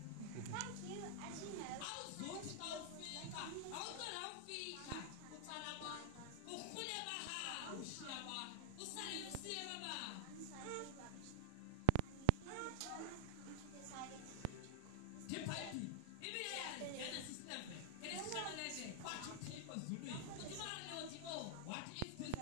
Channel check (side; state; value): both; different; correlation 0.00